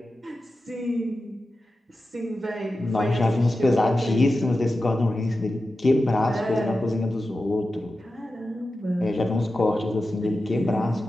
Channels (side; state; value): both; normal; correlation 0.92